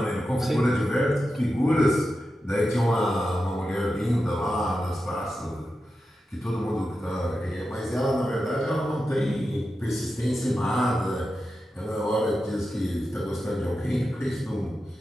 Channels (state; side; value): normal; both; correlation 0.90